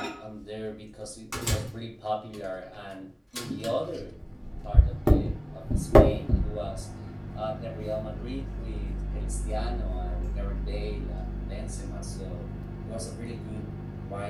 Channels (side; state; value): both; identical; correlation 1.00